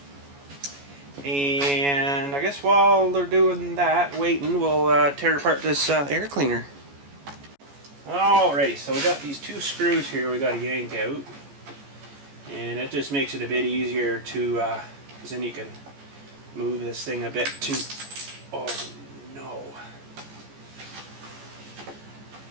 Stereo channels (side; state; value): left; late; 14 ms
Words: And I guess while they're doing that, waiting, we'll tear apart this air cleaner. Alrighty, so we got these two screws here we got to yank out. And it just makes it a bit easier to, because then you can move this thing a bit too. Oh no.